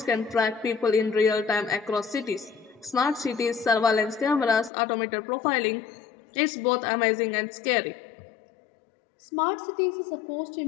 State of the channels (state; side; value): drops out; right; at 4.7 s